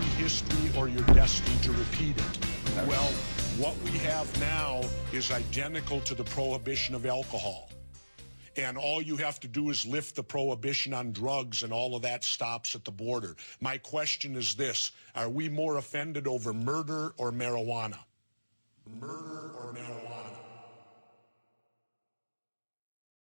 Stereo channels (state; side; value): inverted; both; correlation -1.00